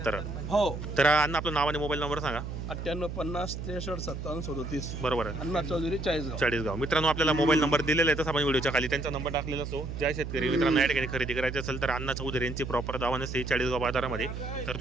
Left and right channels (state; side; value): noise; right; hum, 6 dB below the sound